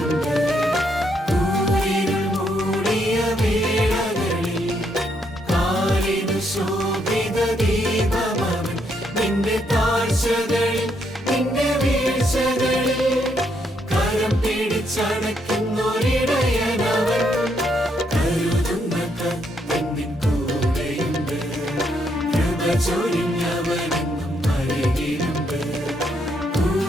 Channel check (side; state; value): both; normal; correlation 0.75